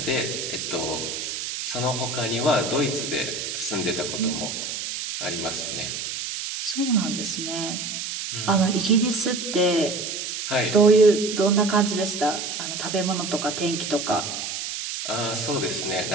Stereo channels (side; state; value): right; noise; hiss, 5 dB below the sound